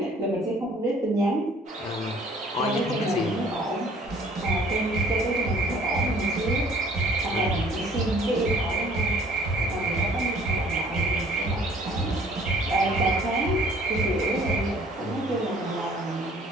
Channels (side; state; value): both; normal; correlation 0.54